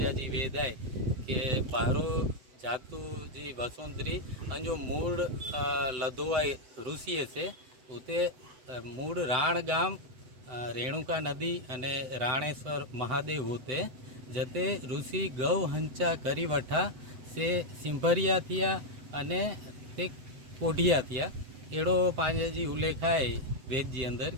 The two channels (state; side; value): late; left; 8.0 ms